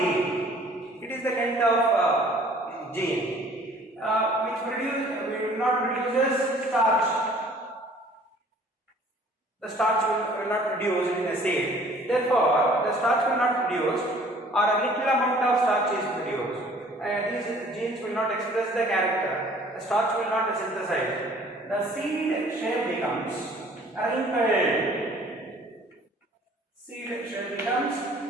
It is the kind of gene which will not produces starch. The starch will not produce in a seed. Therefore, the starch will not produce, or a little amount of starch is produced. These genes will not express the character. The starch will not synthesize. The seed shape becomes wrinkled. Seed shape becomes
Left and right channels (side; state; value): both; normal; correlation 0.54